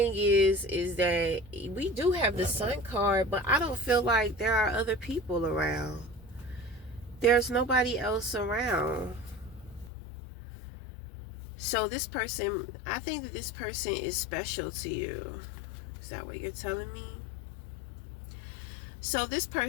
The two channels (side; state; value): right; drops out; at 9.9 s